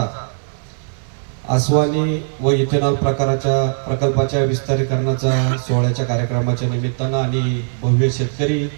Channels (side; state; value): left; silent; digital silence